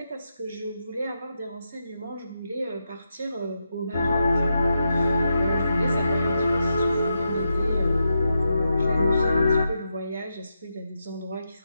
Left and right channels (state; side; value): inverted; both; correlation -0.86